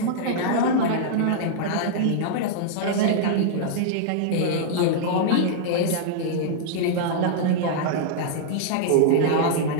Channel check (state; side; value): different; both; correlation -0.02